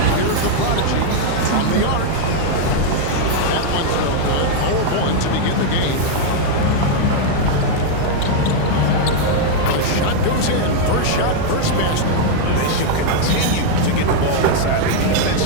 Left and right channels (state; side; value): different; both; correlation 0.00